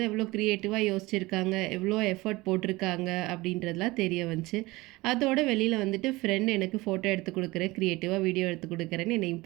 எவ்வளோ க்ரியேட்டிவாக யோசிச்சிருக்காங்க, எவ்வளோ எஃபர்ட் போட்டிருக்காங்க அப்படின்றதுலாம் தெரிய வந்துச்சு. அதோட வெளியில் வந்துட்டு ஃப்ரெண்ட் எனக்கு ஃபோட்டோ எடுத்து கொடுக்குறேன், க்ரியேட்டிவாக வீடியோ எடுத்து கொடுக்குறேன்னு என்னை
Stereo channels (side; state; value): left; quieter; 21.1 dB